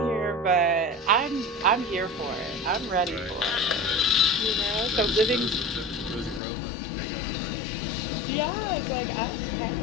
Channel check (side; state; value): right; drops out; at 6.4 s